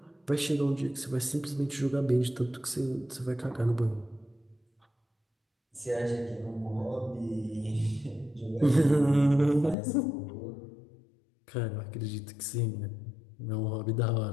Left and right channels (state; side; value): drops out; right; at 9.8 s